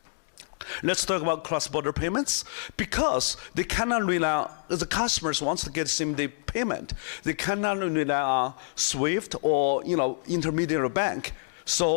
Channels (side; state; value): right; silent; digital silence